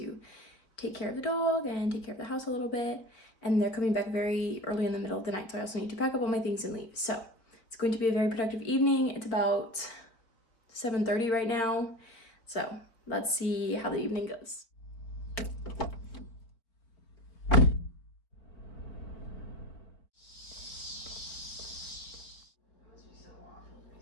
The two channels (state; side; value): late; right; 4.3 ms